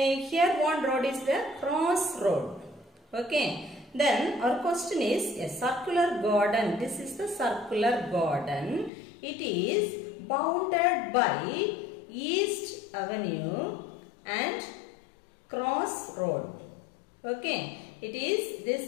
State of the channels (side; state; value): right; drops out; at 8.9 s